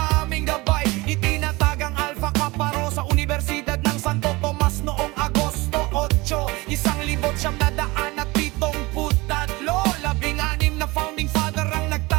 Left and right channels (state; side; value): quieter; left; 22.7 dB